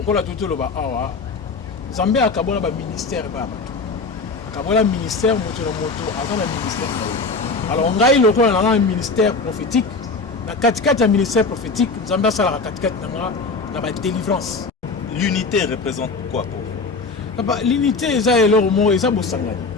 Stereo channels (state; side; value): quieter; right; 3.9 dB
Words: kola tout le ba awa Zambé a kabola ba ministère ba bato. Kabola ministère moto na moto avant le ministère. Alors on gagne le kola na un ministère prophétique. Na katikati ya ministère prophétique, Zambé sala la katikati na ba délivrance. L'unité représente quoi pour vous? L'unité eza eloro mo eza bosangani.